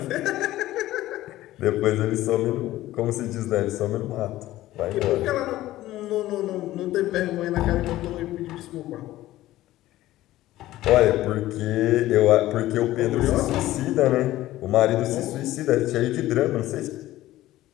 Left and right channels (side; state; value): right; quieter; 15.5 dB